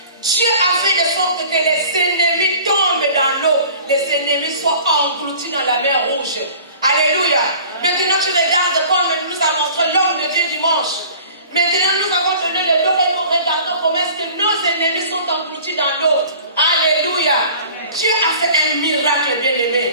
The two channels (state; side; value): inverted; both; correlation -0.46